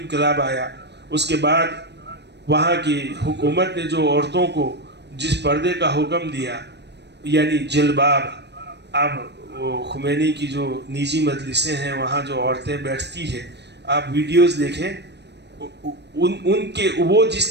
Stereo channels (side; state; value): left; late; 0.50 ms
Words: آیا اس کے بعد وہاں کی حکومت نے جو عورتوں کو جس پردے کا حکم دیا، یعنی جلباب، اب وہ خمینی کی جو نجی مجلسیں ہیں وہاں جو عورتیں بیٹھتی ہیں، آپ ویڈیوز دیکھیں، ان کے وہ جس